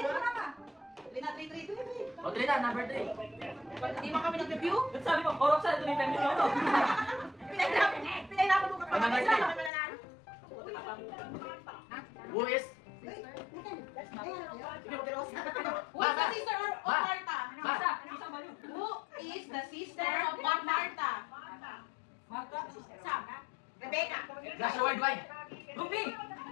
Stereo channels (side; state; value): right; drops out; at 9.7 s